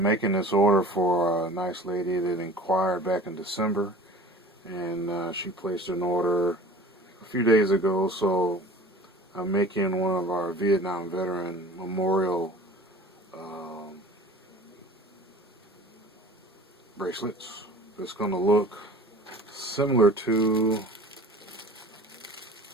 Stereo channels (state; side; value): normal; both; correlation 0.42